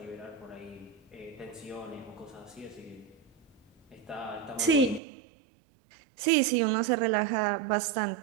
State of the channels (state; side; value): drops out; left; at 5.0 s